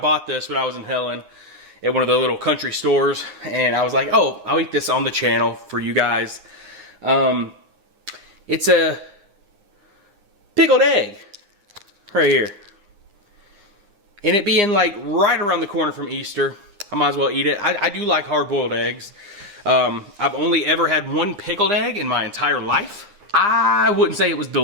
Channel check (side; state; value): left; late; 9.8 ms